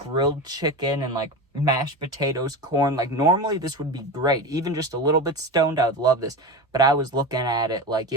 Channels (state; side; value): normal; both; correlation 0.24